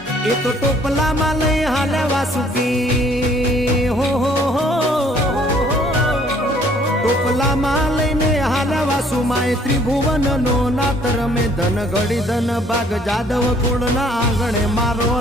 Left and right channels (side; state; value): both; normal; correlation 0.60